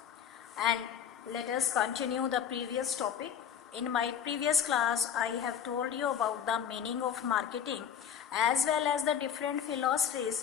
and let us continue the previous topic. In my previous class I have told you about the meaning of marketing as well as the different philosophies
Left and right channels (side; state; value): right; quieter; 8.6 dB